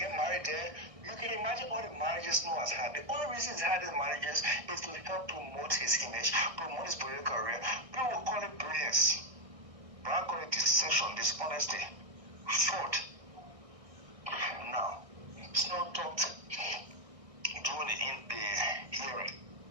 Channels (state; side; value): late; left; 1.6 ms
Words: married there, you can imagine all the marriages Snow has had. The only reason he's had these marriages is to help promote his image, promote his political career. People will call it brilliance. But I call it deception, dishonesty, fraud. Now, Snow talked during the hearing